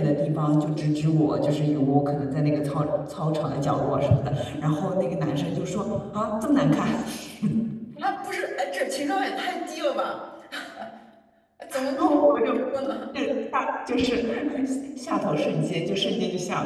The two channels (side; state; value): both; identical; correlation 1.00